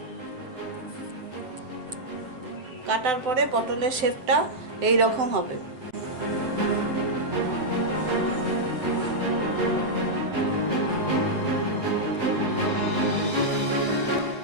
কাটার পরে পটলের শেপটা এই রকম হবে।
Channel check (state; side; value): late; left; 7.8 ms